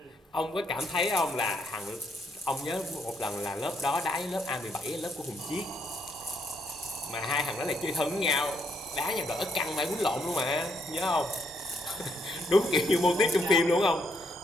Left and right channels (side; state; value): both; normal; correlation 0.74